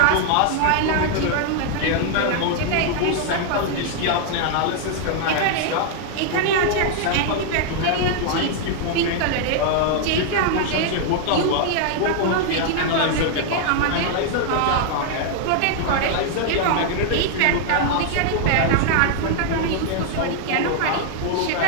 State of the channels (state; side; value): different; both; correlation 0.00